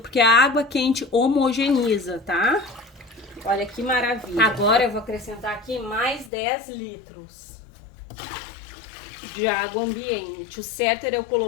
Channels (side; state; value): right; drops out; at 6.3 s